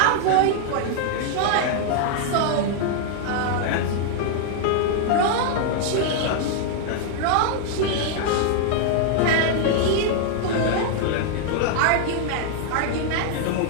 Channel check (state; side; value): different; both; correlation 0.00